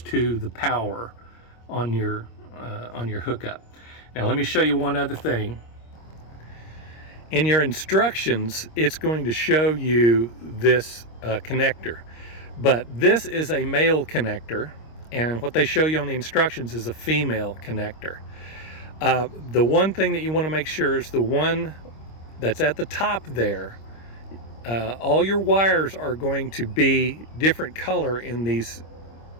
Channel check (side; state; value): right; late; 26 ms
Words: to the power on your hookup. Now let me show you one other thing. In your instructions, it's going to show you this connector, but this is a male connector, and what they show you on the instructions is a female connector. The one thing that you want to make sure is the one that's at the top there. All your wires are going to be different color in these